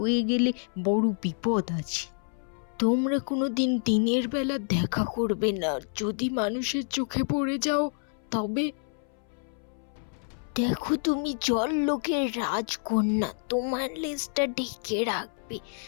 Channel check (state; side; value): silent; right; 59 dB below the other